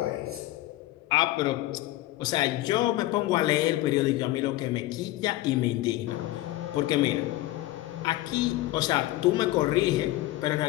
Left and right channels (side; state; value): right; quieter; 16.6 dB